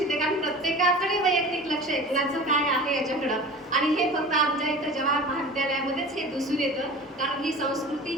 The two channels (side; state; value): both; normal; correlation 0.37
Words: कारण प्रत्येकाकडे वैयक्तिक लक्ष आहे कुणाचं काय आहे याच्याकडं. आणि हे फक्त आमच्या इथं जवाहर महाविद्यालयामध्येच हे दिसून येतं. कारण ही संस्कृती,